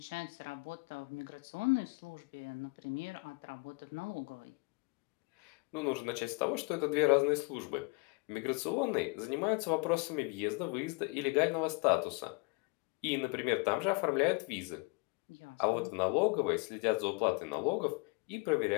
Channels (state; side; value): quieter; right; 29.9 dB